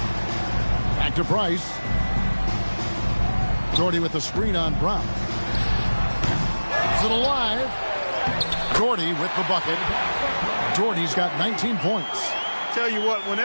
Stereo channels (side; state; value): both; inverted; correlation -1.00